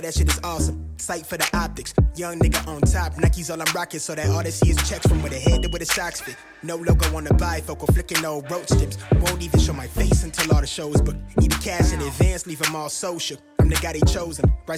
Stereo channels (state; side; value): identical; both; correlation 1.00